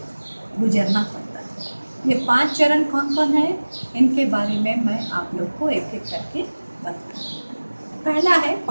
गुजरना पड़ता है। ये 5 चरण कौन कौन है, इनके बारे में मैं आप लोग को एक एक करके बताऊँ। पहला है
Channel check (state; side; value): inverted; both; correlation -1.00